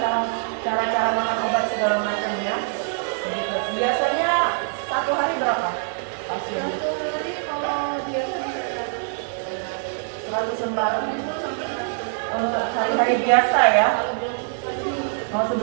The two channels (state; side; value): silent; left; 55 dB below the other